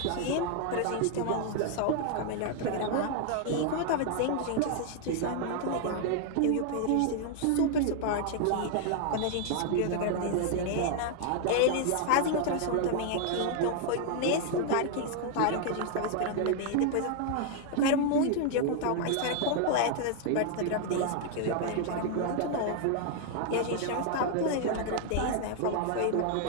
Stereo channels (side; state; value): both; different; correlation 0.00